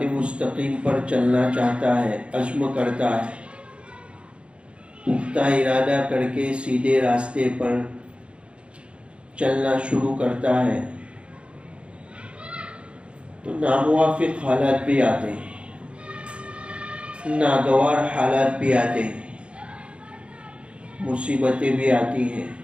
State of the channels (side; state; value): left; late; 0.058 ms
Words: مستقیم پر چلنا چاہتا ہے، عزم کرتا ہے، پختہ ارادہ کر کے سیدھے راستے پر چلنا شروع کرتا ہے تو ناموافق حالات بھی آتے ہیں، ناگوار حالات بھی آتے ہیں، مصیبتیں بھی آتی ہیں.